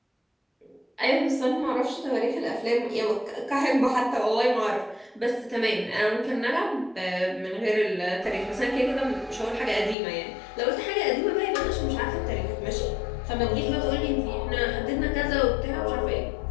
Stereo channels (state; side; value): drops out; right; at 10.0 s